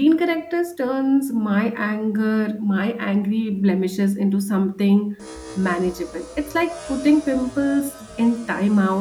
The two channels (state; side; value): identical; both; correlation 1.00